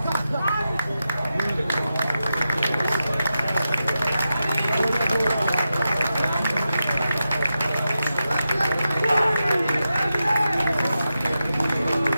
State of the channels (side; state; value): both; inverted; correlation -0.90